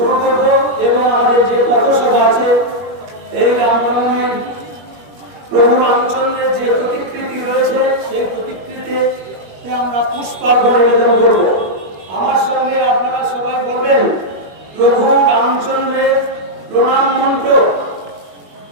করব এবং আমাদের যে পথসভা আছে এই রামনবমীর প্রভু রামচন্দ্রের যে প্রতিকৃতি রয়েছে সেই প্রতিকৃতিতে আমরা পুষ্পার্ঘ্য নিবেদন করব। আমার সঙ্গে আপনারা সবাই বলবেন প্রভু রামচন্দ্রের প্রণাম মন্ত্র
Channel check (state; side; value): late; left; 21 ms